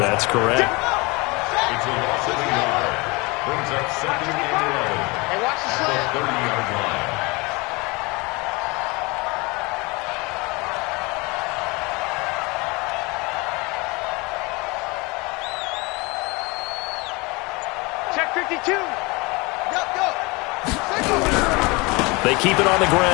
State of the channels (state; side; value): quieter; right; 25.9 dB